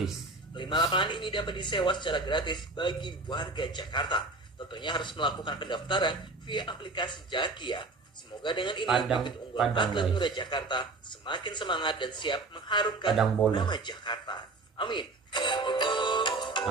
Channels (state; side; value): quieter; left; 3.3 dB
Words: 5 lapangan ini dapat disewa secara gratis bagi warga Jakarta. Tentunya harus melakukan pendaftaran via aplikasi Jaki ya. Semoga dengan ini bibit unggulan atlet muda Jakarta semakin semangat dan siap mengharumkan nama Jakarta. Amin.